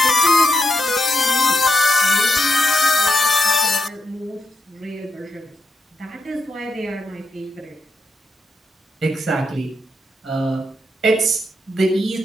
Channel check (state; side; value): normal; both; correlation 0.82